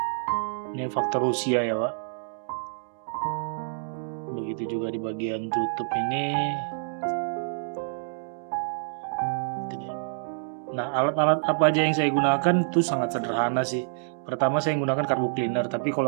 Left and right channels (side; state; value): left; silent; digital silence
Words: Ini faktor usia ya Wak. Begitu juga di bagian tutup ini. Nah, alat-alat apa aja yang saya gunakan itu sangat sederhana sih. Pertama saya gunakan carbo cleaner, tapi